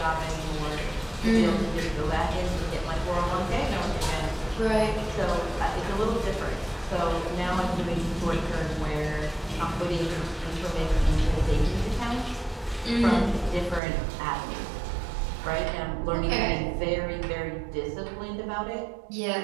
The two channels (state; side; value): drops out; left; at 13.8 s